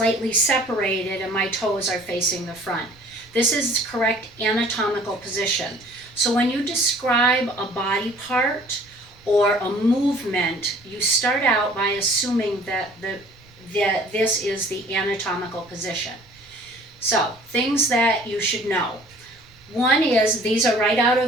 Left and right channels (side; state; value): right; noise; rumble, 28 dB below the sound